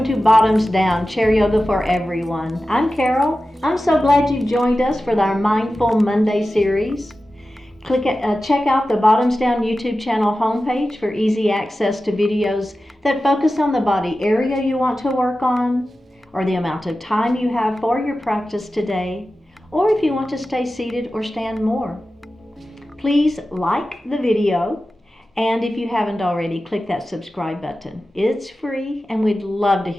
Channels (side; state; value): both; normal; correlation 0.94